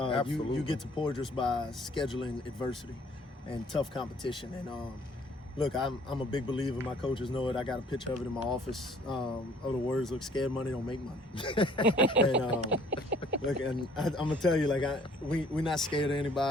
You get to Porter by scheduling adversity and tough competition. And look, I'm a big believer. My coaches know it. I got a picture of it in my office. The words look: "Scared money don't make money." And look, and I'm gonna tell you, like, we're not scared of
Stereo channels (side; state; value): both; normal; correlation 0.57